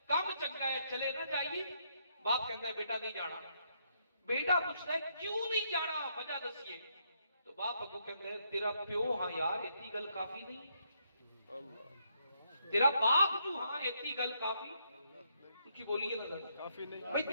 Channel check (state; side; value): inverted; both; correlation -0.75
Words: کام چنگا ہے چلے نہ جائیے. باپ کہتا ہے بیٹا نہیں جانا. بیٹا پوچھتا ہے کیوں نہیں جانا, وجہ دسیے. تو باپ کو کہتا ہے تیرا پیو ہاں یار اتنی گل کافی نہیں, تیرا باپ جو ہاں اتنی گل کافی کی بولیے نا کافی نہیں بھائی,